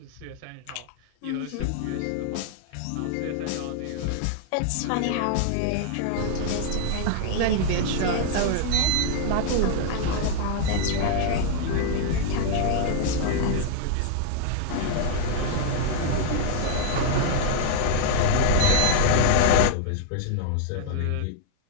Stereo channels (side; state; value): both; different; correlation -0.01